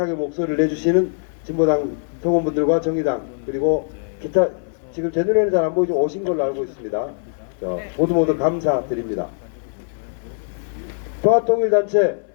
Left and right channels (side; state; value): right; silent; digital silence